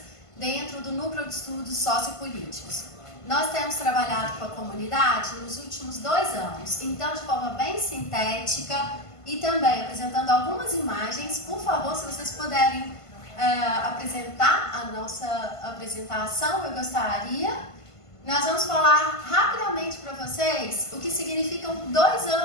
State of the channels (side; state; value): right; late; 1.5 ms